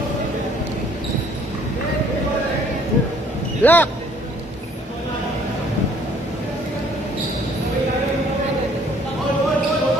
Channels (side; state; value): both; normal; correlation 0.59